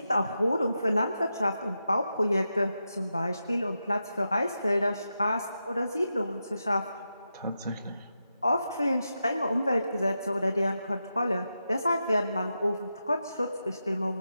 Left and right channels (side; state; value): both; inverted; correlation -0.88